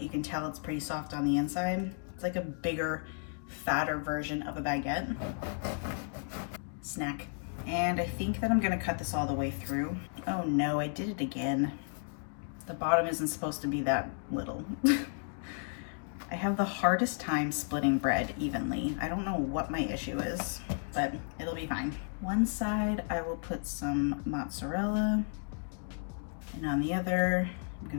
you can tell it's pretty soft on the inside. It's like a bigger, fatter version of a baguette. Snack. And I think that I'm gonna cut this all the way through. Oh no, I did it again. The bottom isn't supposed to be that little. I have the hardest time splitting bread evenly. I don't know what my issue is, but it'll be fine. One side, I will put some mozzarella, and on the other, I'm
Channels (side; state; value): right; silent; 56 dB below the other